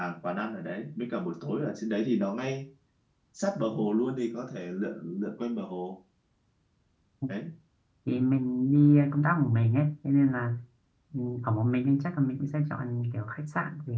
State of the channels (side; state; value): both; identical; correlation 1.00